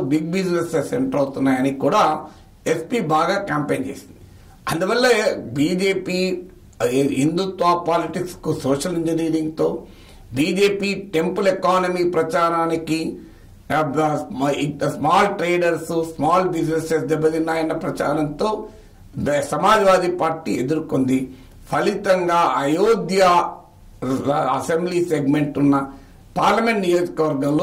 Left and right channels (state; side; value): identical; both; correlation 1.00